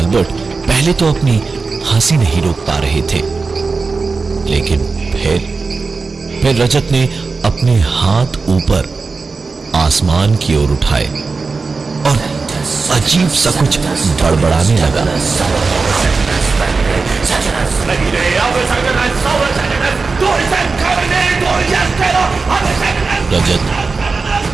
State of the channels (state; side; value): quieter; left; 4.3 dB